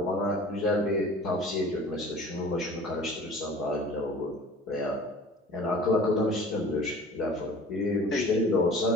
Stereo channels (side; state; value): both; normal; correlation 0.44